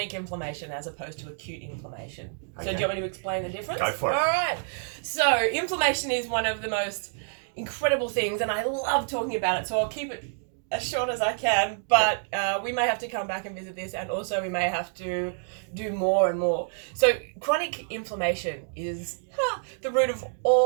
inflammation as opposed to acute inflammation. So do you want me to explain the difference? Go for it. All right. So inflammation is one of the most incredible things, and I love talking about it. So I'll keep it as short as I can, but we may have to come back and visit this, and also we may have to do more and more. So chronic inflammation is the root of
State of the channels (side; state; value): left; silent; digital silence